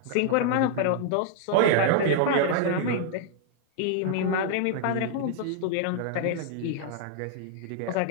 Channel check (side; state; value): both; different; correlation -0.01